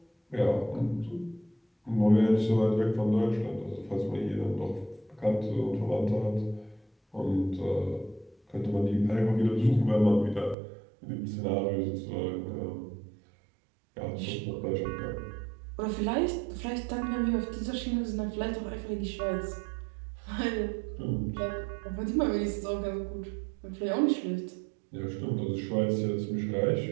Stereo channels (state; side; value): drops out; left; at 10.6 s